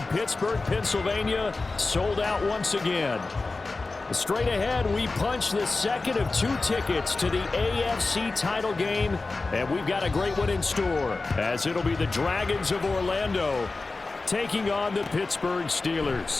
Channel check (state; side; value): quieter; right; 3.6 dB